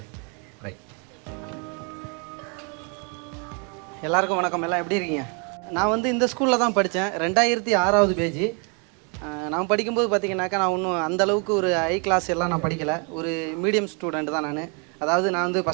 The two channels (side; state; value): left; quieter; 35.9 dB